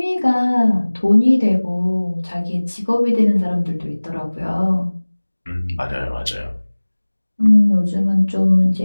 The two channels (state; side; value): inverted; both; correlation -1.00